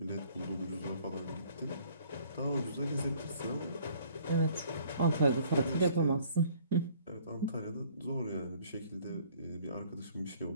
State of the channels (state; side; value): inverted; both; correlation -0.57